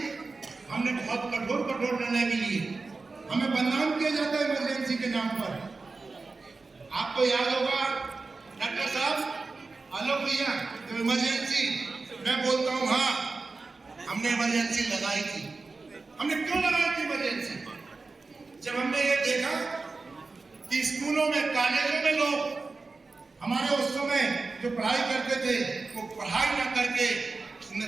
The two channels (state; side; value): quieter; left; 3.9 dB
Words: हमने बहुत कठोर निर्णय भी लिए। हमें बदनाम किया जाता है इमरजेंसी के नाम पर। आपको याद होगा डॉक्टर साहब, आलोक भैया, तो इमरजेंसी, मैं बोलता हूं हाँ, हमने इमरजेंसी लगाई थी। हमने क्यों लगाई थी इमरजेंसी? जब हमने ये देखा कि स्कूलों में, कॉलेजों में लोग हमारे उस समय जो पढ़ाई करते थे वो पढ़ाई ना करके